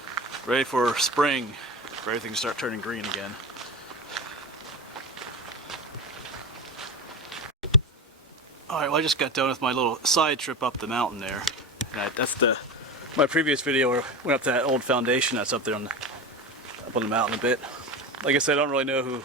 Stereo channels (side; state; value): both; normal; correlation 0.24